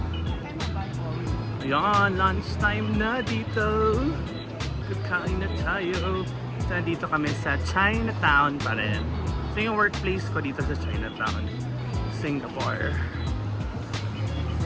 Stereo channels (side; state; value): both; identical; correlation 1.00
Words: Ayan, lunchtime na dito. Kakain na tayo. So, dito kami sa Chinatown pa rin. So, yung workplace ko dito sa Chinatown, Singapore.